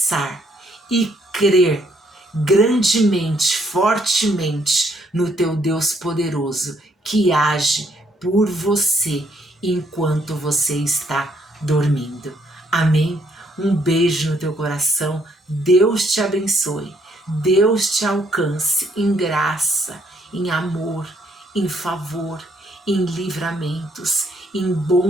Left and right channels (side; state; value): both; normal; correlation 0.70